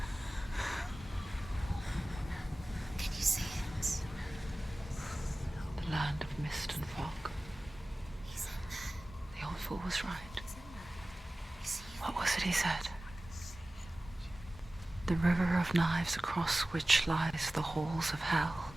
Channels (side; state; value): both; normal; correlation 0.97